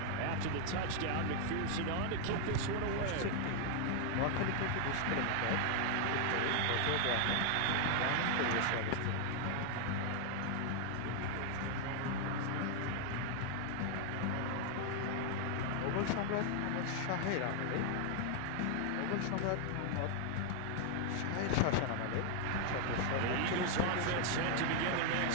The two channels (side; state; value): both; different; correlation 0.00